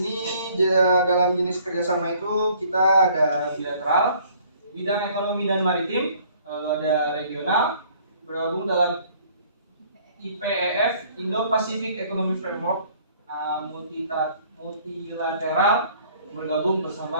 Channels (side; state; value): both; inverted; correlation -0.58